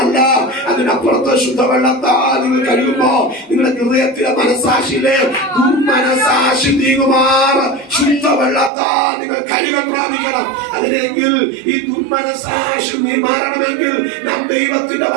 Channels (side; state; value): left; drops out; at 8.7 s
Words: അതിനപ്പുറത്ത് ശുദ്ധവെള്ളത്താൽ നിങ്ങൾ കഴുകുമ്പോ നിങ്ങളുടെ ഹൃദയത്തിലെ മനസാക്ഷിയിലെ ദുർമനസാക്ഷി നീങ്ങുമാർ ശുദ്ധവെള്ളത്താൽ നിങ്ങൾ കഴുകൽ പ്രാപിക്കണം. അതിനെങ്കിൽ ഈ ദുർമനസാക്ഷി മാറണമെങ്കിൽ നാം ദൈവത്തിന്റെ